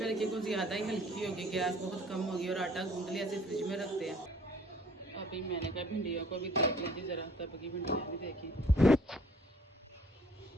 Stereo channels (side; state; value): both; normal; correlation 0.55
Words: रखी, कुछ ज़्यादा ही हल्की होगी, गैस बहुत कम होगी, और आटा गूंथ लिया, इसे फ्रिज में रखते हैं। अभी मैंने कहा भिंडियों को भी देख लीजिए ज़रा, तब की भिंडियाँ भी देखी।